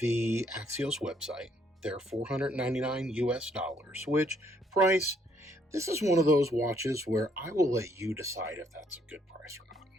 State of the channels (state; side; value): normal; both; correlation 0.69